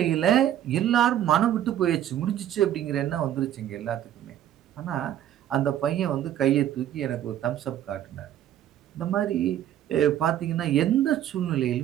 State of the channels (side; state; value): left; quieter; 11.3 dB